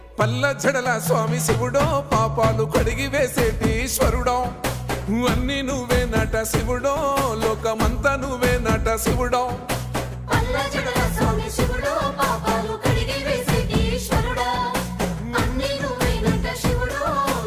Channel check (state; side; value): identical; both; correlation 1.00